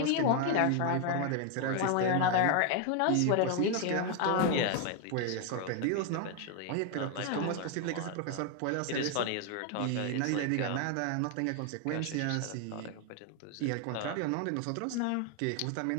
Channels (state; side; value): different; both; correlation 0.01